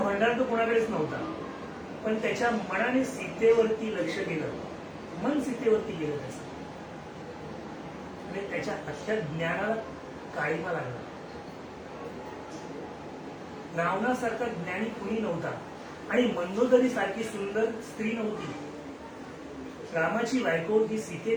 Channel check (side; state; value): both; identical; correlation 1.00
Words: तो कोणाकडेच नव्हता. पण त्याच्या मनाने सीतेवरती लक्ष गेलं, मन सीतेवरती गेलं त्याचं. आणि त्याच्या अख्ख्या ज्ञानाला काळीमा लागला. रावणासारखा ज्ञानी कुणी नव्हता. आणि मंदोदरी सारखी सुंदर स्त्री नव्हती. रामाची बायको ही